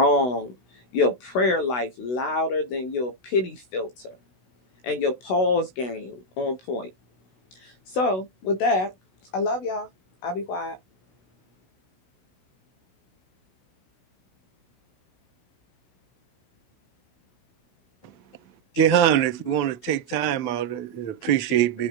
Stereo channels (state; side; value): late; right; 16 ms